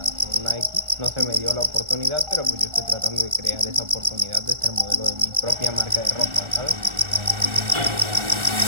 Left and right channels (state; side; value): late; left; 1.4 ms